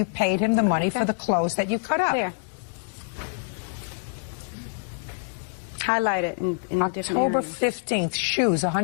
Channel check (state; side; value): silent; right; digital silence